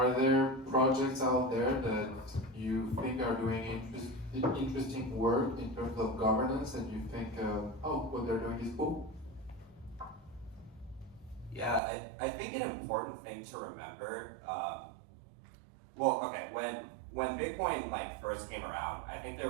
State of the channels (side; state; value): left; drops out; at 11.8 s